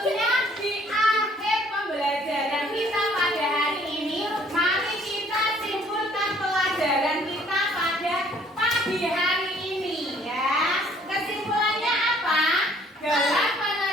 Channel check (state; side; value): normal; both; correlation 0.60